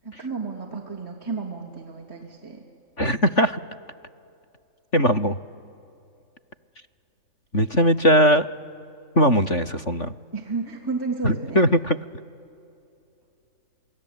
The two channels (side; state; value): right; late; 3.5 ms